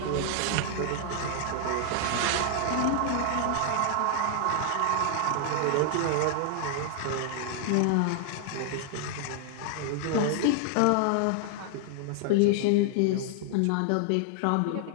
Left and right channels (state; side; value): different; both; correlation 0.00